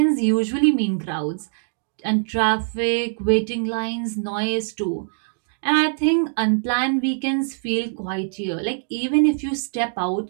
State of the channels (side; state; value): left; silent; digital silence